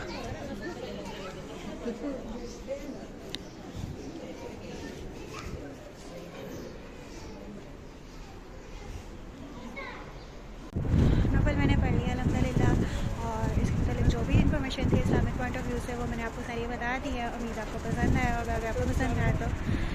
नफल मैंने पढ़ लिया अल्हम्दुलिल्लाह। और इसके मतलब जो भी इन्फॉर्मेशन थी इस्लामिक पॉइंट ऑफ व्यू से वो मैंने आपको सारी बता दी है। उम्मीद आपको पसंद आया होगा। अगर आपको पसंद आया तो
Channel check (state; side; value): identical; both; correlation 1.00